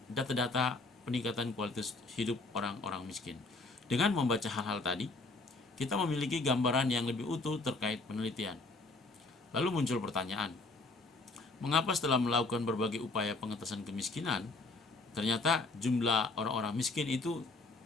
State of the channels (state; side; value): quieter; right; 3.4 dB